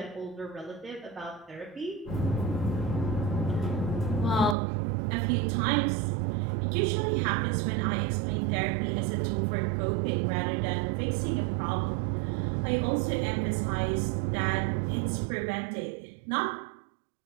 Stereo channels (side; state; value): left; drops out; at 4.5 s